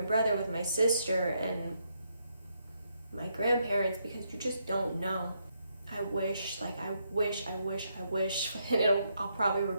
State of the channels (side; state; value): both; inverted; correlation -0.78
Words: brother, with my sister, and my grandparents, because you just don't know. I wish, and I'll probably